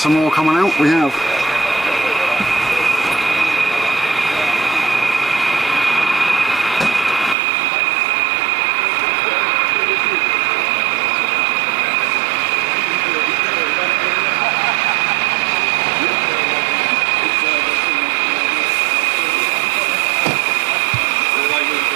more coming out. We have.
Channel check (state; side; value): drops out; left; at 7.4 s